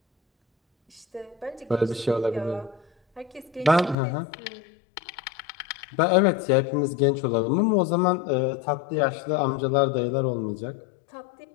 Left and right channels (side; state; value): right; drops out; at 4.0 s